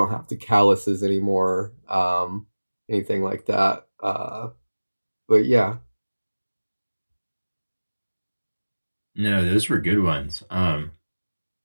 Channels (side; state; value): both; inverted; correlation -1.00